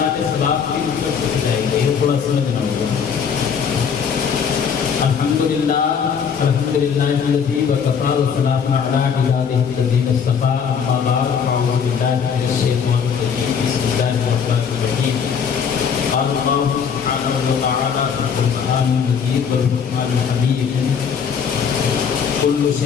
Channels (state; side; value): quieter; right; 6.9 dB